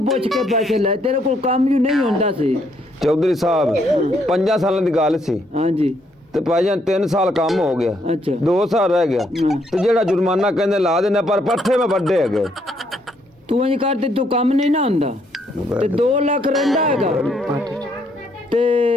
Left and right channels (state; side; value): normal; both; correlation 0.72